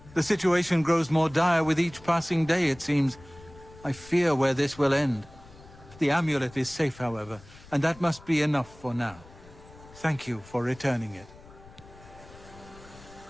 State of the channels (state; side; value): noise; left; rumble, 21 dB below the sound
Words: The situation grows more dire with each passing day, it seems. I fear where this will end. The amulet is safe, however, and that must be enough for now. Thank you for returning it.